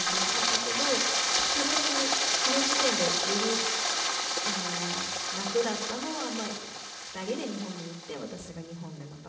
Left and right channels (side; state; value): both; identical; correlation 1.00